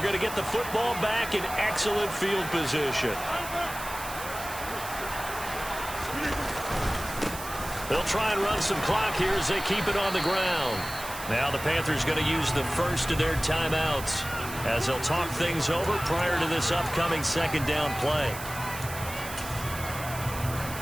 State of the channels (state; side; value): noise; right; hiss, 11 dB below the sound